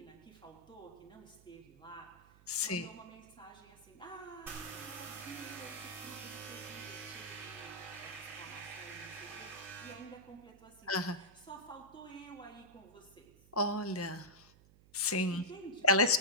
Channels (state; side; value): noise; right; hum, 24 dB below the sound